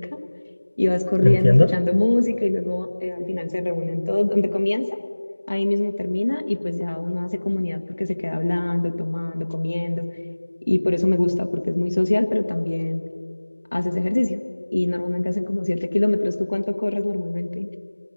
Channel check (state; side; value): inverted; both; correlation -1.00